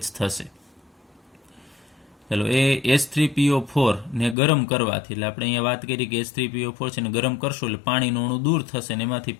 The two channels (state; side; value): drops out; right; at 4.4 s